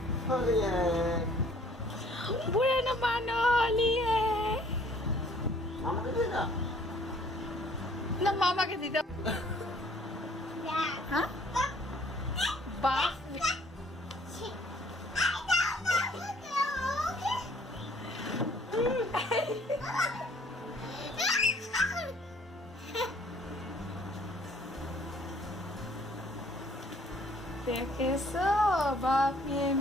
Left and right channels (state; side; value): normal; both; correlation 0.58